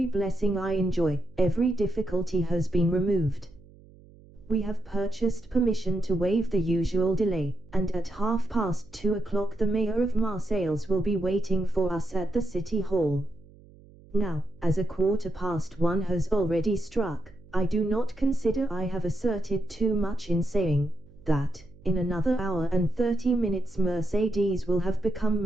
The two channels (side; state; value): right; noise; hum, 24 dB below the sound